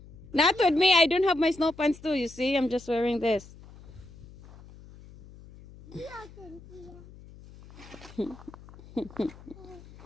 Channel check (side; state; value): left; noise; hum, 20 dB below the sound